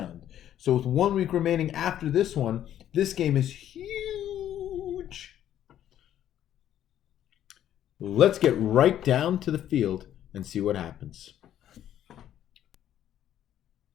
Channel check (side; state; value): right; quieter; 11.2 dB